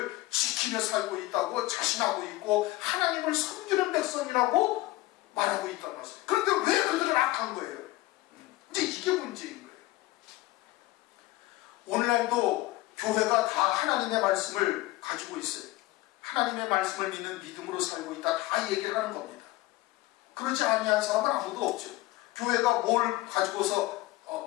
지키며 살고 있다고 자신하고 있고 하나님을 섬기는 백성이라고 말하고 있단 말이에요. 그런데 왜 그들은 악한 거예요? 이제 이게 문제인 거예요. 오늘날도 교회가 다 하나님의 말씀을 가지고 있어요. 하나님의 말씀을 믿는 믿음으로 살고 있다. 다 얘기를 하는 겁니다. 그렇지 아니한 사람은 아무도 없죠. 교회가 뭘 가지고서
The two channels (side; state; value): right; quieter; 18.4 dB